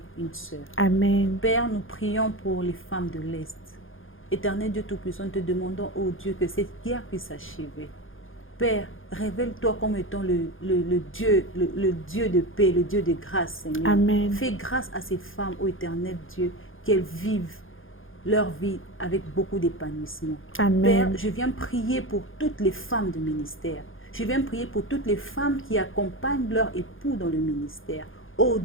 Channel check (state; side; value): late; right; 0.59 ms